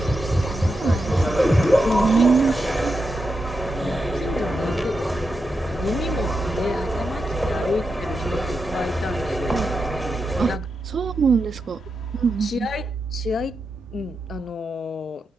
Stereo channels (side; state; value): both; normal; correlation 0.87